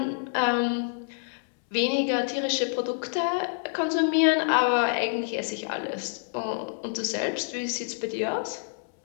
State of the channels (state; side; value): silent; right; 60 dB below the other